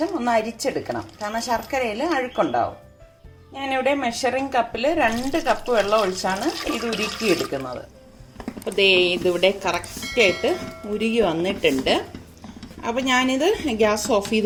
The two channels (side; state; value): both; identical; correlation 1.00